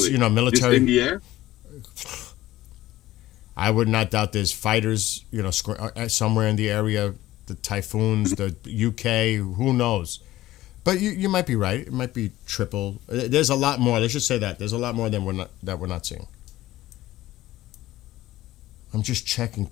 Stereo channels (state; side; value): quieter; right; 15.7 dB